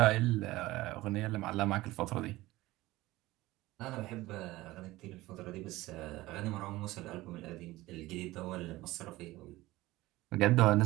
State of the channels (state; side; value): quieter; left; 18.4 dB